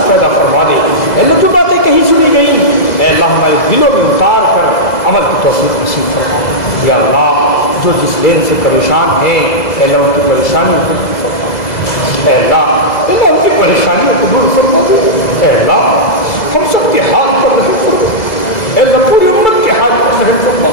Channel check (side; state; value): right; late; 2.0 ms